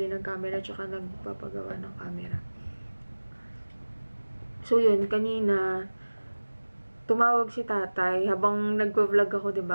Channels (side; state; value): both; inverted; correlation -1.00